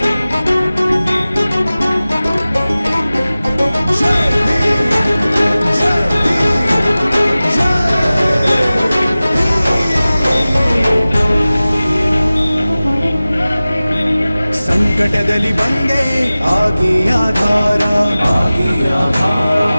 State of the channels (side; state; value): both; inverted; correlation -0.97